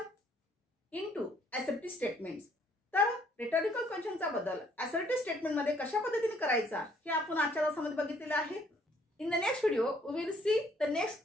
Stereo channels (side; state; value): both; normal; correlation 0.64